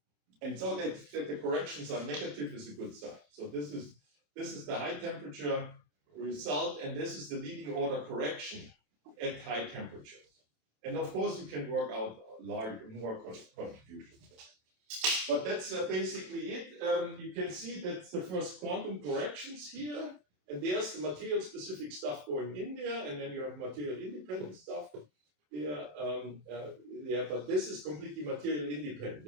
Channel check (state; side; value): late; left; 27 ms